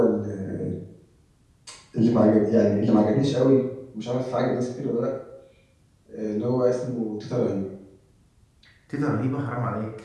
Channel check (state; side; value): identical; both; correlation 1.00